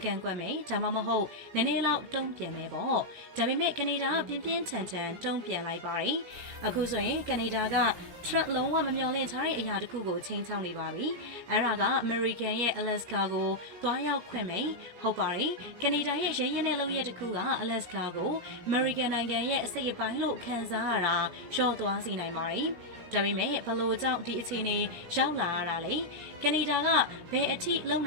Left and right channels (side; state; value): left; late; 17 ms